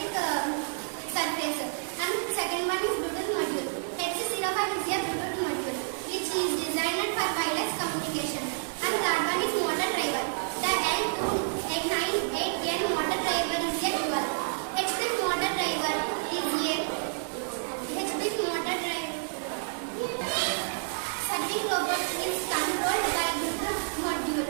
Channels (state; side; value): silent; left; digital silence